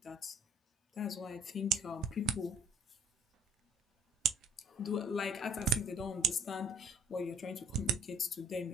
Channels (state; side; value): normal; both; correlation 0.57